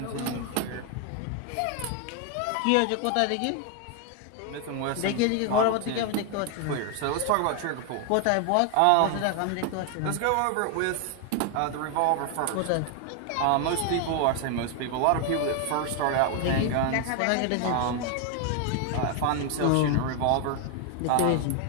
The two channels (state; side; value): different; both; correlation 0.01